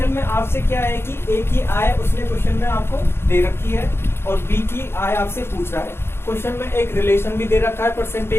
में आपसे क्या है कि ए की आय उसने क्वेश्चन में आपको दे रखी है और बी की आय आपसे पूछ रहा है। क्वेश्चन में एक रिलेशन भी दे रखा है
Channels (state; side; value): late; right; 0.12 ms